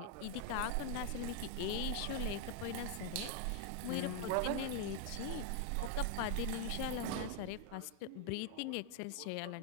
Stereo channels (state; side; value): different; both; correlation 0.00